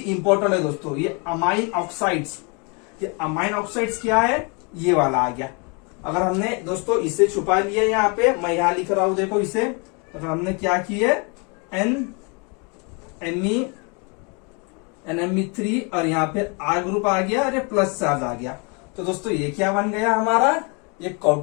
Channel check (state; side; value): quieter; right; 33.0 dB